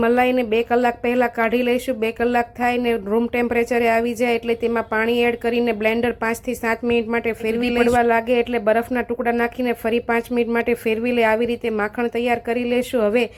મલાઈને 2 કલાક પહેલાં કાઢી લઈશું। 2 કલાક થાય ને રૂમ ટેમ્પરેચરે આવી જાય એટલે તેમાં પાણી એડ કરીને બ્લેન્ડર 5 થી 7 મિનિટ માટે ફેરવી પડવા લાગે એટલે બરફના ટુકડા નાખીને ફરી 5 મિનિટ માટે ફેરવી લે। આવી રીતે માખણ તૈયાર કરી લેશું। હવે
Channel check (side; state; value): both; identical; correlation 1.00